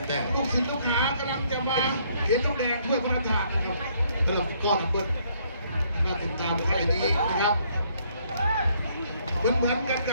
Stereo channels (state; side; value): inverted; both; correlation -0.67